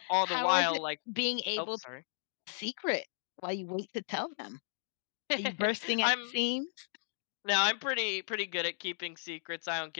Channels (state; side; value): silent; right; digital silence